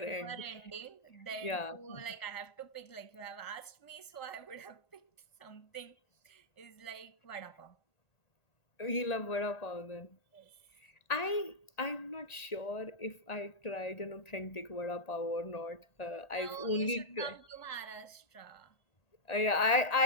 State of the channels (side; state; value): right; late; 1.8 ms